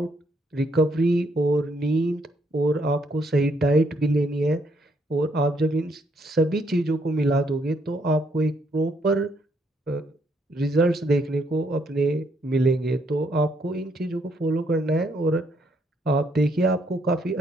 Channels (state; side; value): normal; both; correlation 0.72